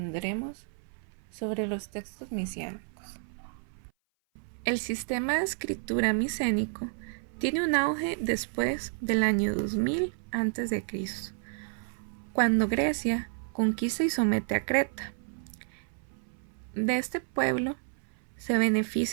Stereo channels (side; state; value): left; silent; 56 dB below the other